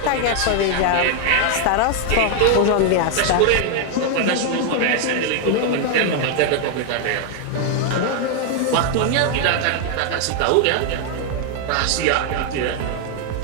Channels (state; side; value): different; both; correlation 0.01